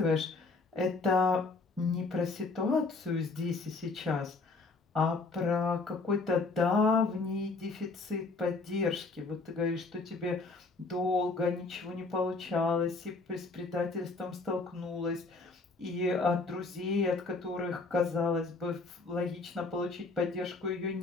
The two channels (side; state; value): right; quieter; 3.7 dB